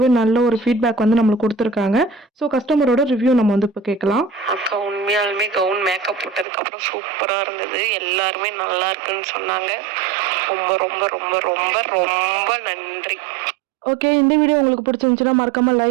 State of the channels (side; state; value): left; drops out; at 6.5 s